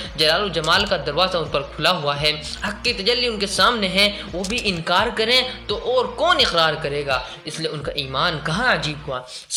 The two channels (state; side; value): identical; both; correlation 1.00